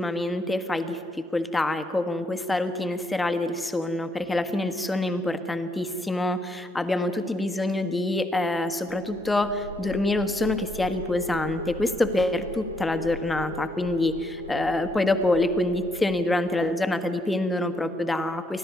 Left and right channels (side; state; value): both; normal; correlation 0.74